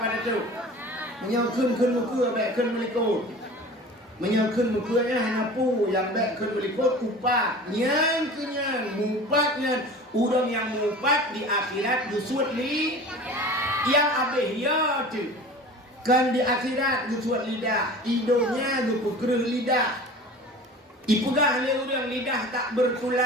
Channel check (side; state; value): both; normal; correlation 0.39